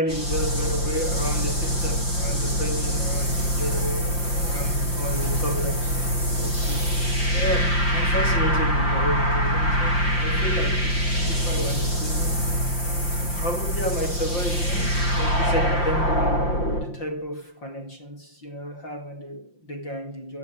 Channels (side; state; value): right; late; 5.8 ms